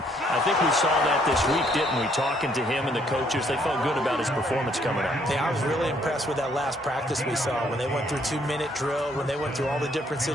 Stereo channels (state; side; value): normal; both; correlation 0.67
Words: I think we saw that this week, didn't we? Talking to him and the coaches, they felt good about his performance coming up. Yeah, I was really impressed with that last practice we saw when they went through 2-minute drill, when they went through all the different